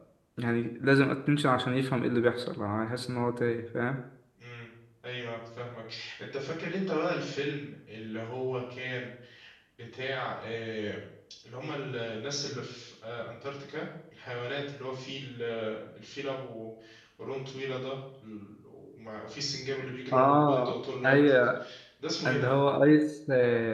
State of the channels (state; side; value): identical; both; correlation 1.00